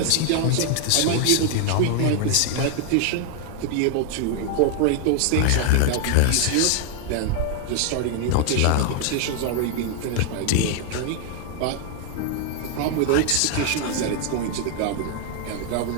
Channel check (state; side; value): different; both; correlation 0.00